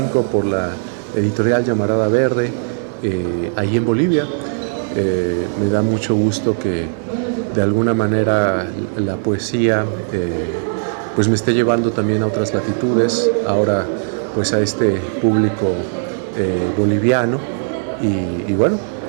por la editorial Llamarada Verde, ahí en Bolivia. Me da mucho gusto que de alguna manera la poesía pues me esté llevando también a otras latitudes, ahora pues a este público boliviano y bueno,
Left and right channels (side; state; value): left; silent; digital silence